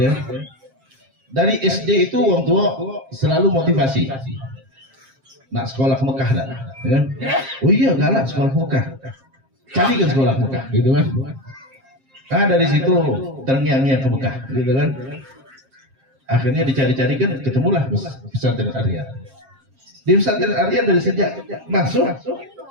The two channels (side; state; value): left; late; 7.5 ms